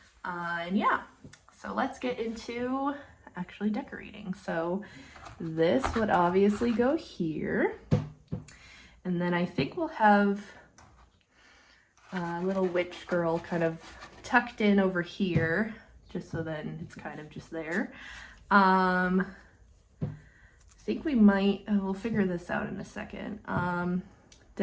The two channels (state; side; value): identical; both; correlation 1.00